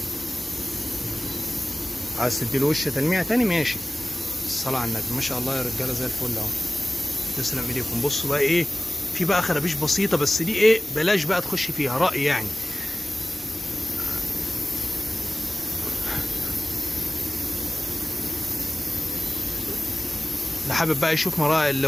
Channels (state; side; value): normal; both; correlation 0.97